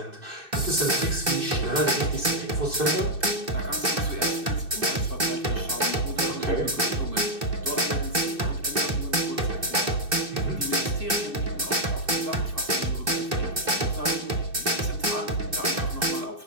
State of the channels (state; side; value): late; left; 2.6 ms